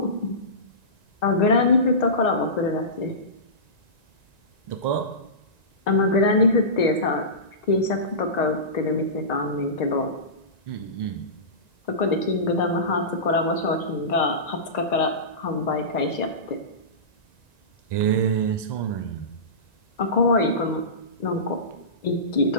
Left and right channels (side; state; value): right; late; 1.9 ms